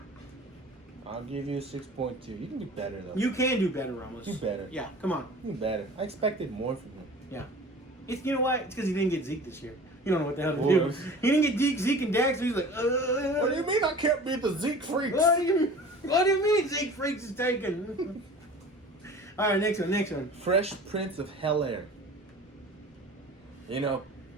I'll give you a 6.2. You can do better, though. You can do better, Ramos. Do better. Yeah, come on. Do better. I expected more from him. Yeah. You know what? It's because he didn't get Zeke this year. You don't know what the hell to Boy. do. He didn't get Zeke and Dax, so he's like, What do you mean I can't beat the Zeke freaks? What do you mean Zeke Freaks is taken? All right, next one. Fresh Prince of Bel-Air. You know,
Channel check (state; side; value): normal; both; correlation 0.41